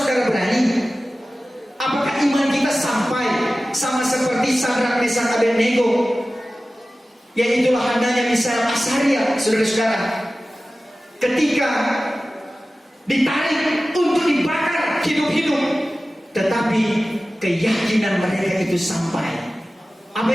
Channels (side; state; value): both; normal; correlation 0.96